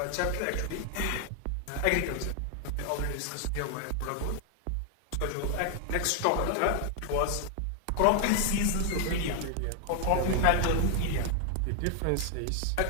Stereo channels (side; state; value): both; different; correlation 0.00